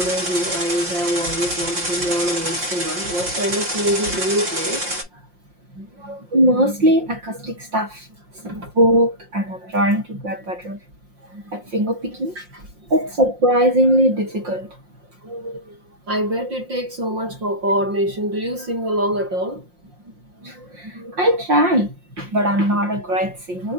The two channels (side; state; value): left; late; 5.6 ms